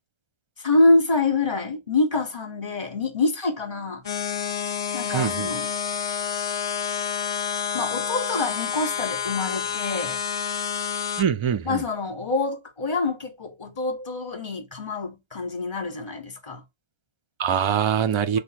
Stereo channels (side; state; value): left; late; 1.3 ms